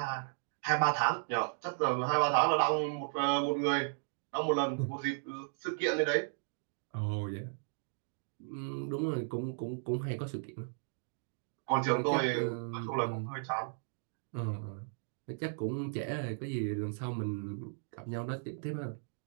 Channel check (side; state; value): left; silent; digital silence